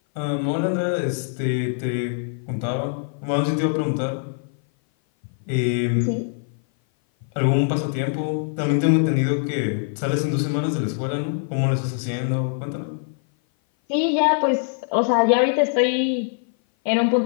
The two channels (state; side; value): silent; right; 57 dB below the other